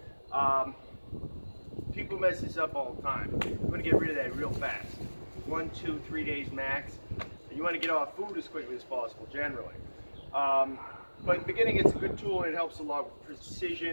People mess this up all the time. You want to get rid of that real fast. 1, 2, 3 days max. And you want to get off food as quickly as possible, generally. But in the beginning, it's a good tool and it helps a lot with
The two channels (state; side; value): inverted; both; correlation -1.00